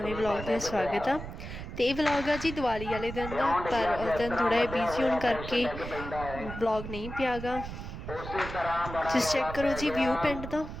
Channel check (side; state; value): right; noise; rumble, 9 dB below the sound